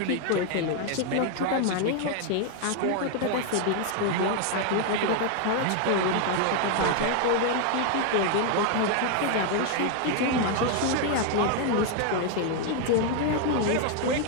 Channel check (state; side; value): different; both; correlation 0.00